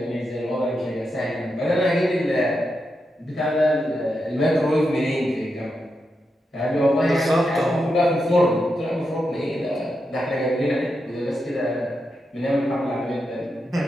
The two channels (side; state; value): both; normal; correlation 0.86